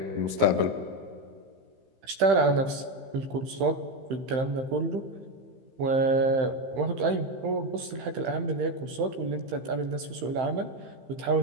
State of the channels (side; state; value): left; late; 15 ms